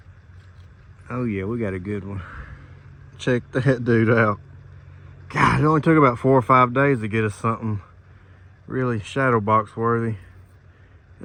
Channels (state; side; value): identical; both; correlation 1.00